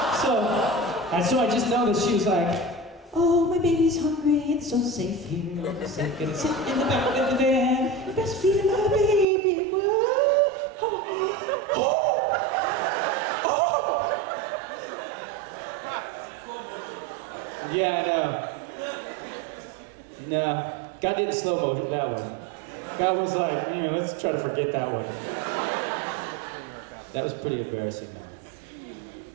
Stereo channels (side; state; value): left; drops out; at 9.2 s